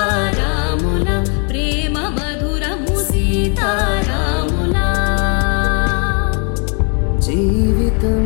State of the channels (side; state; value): right; quieter; 38.2 dB